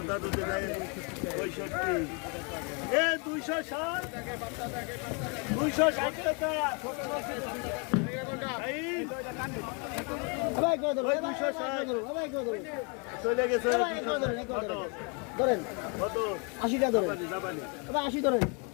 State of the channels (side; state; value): right; quieter; 34.0 dB